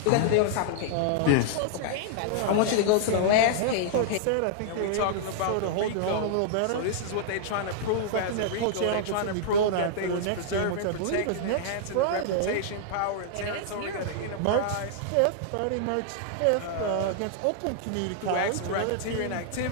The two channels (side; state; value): both; different; correlation -0.01